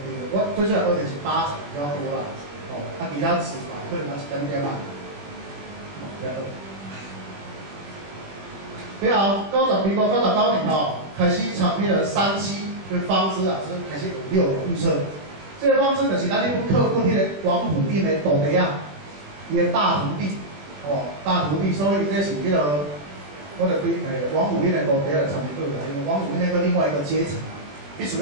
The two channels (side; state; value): left; late; 21 ms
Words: 我最主要学的是8仔比较多啦，哦，其他词法可能一点点嘛，了后民国99年吼，开始参迄个37跟方知老师开始有6种预测。这个方知就是咱迄本课本迄个王府印的徒弟啊，伊的大徒弟，哦，大徒弟，所以这是迄个，我就对王府印的徒弟来参与啦，因为王府印那个另外一个阶层。必须